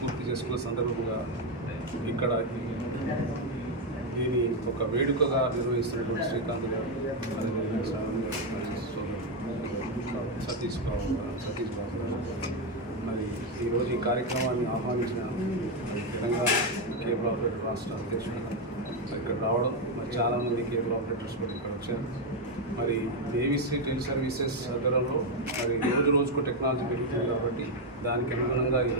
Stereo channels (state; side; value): normal; both; correlation 0.05